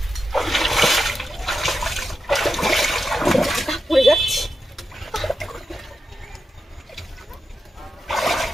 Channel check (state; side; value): normal; both; correlation 0.89